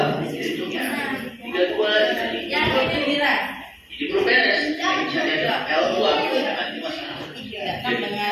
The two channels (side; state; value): both; identical; correlation 1.00